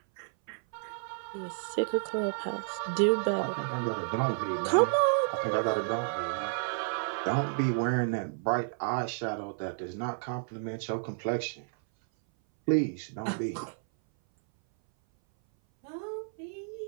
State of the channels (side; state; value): left; silent; 57 dB below the other